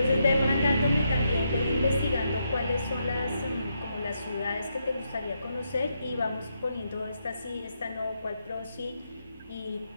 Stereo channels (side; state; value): both; inverted; correlation -0.80